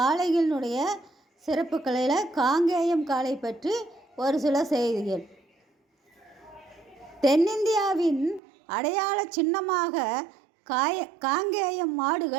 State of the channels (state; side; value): drops out; left; at 8.4 s